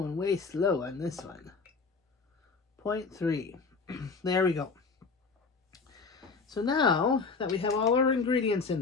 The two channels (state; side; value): quieter; right; 4.6 dB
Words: way slow on this one. 0.3. There we go. So now that we have all our ingredients in